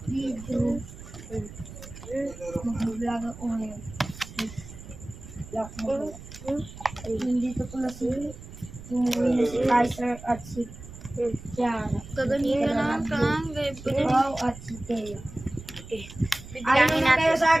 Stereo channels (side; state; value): right; noise; rumble, 15 dB below the sound